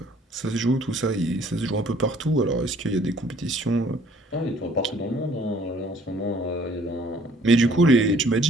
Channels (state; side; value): normal; both; correlation 0.58